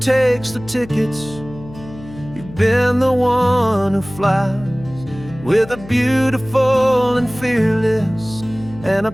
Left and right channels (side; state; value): left; noise; hum, 17 dB below the sound